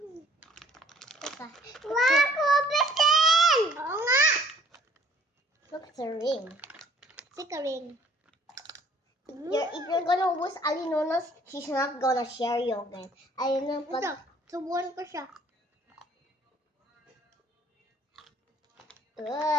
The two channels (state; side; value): normal; both; correlation 0.58